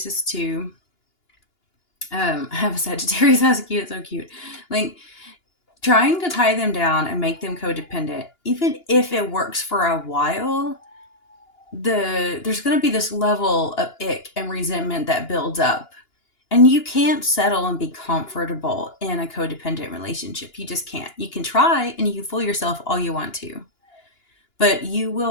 too. I have a Sagittarius. That's cute. So cute. Like, trying to tie them down and make them codependent, even if it works for a while, there's going to be this level of ick and resentment that builds up. And you can't settle and be comfortable in a codependent relationship. You just can't. You can try and you can fool yourself all you want to, but you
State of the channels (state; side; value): late; right; 2.9 ms